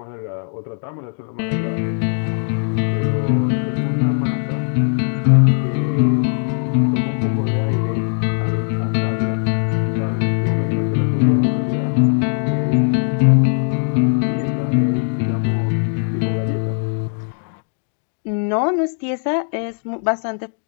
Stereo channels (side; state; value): right; silent; 66 dB below the other